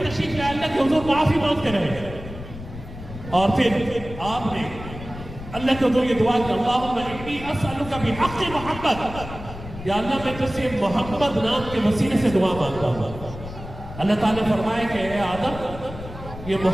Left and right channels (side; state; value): left; noise; rumble, 12 dB below the sound